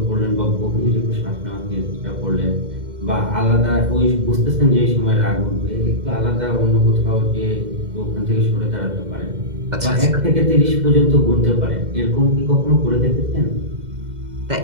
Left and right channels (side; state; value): left; late; 2.1 ms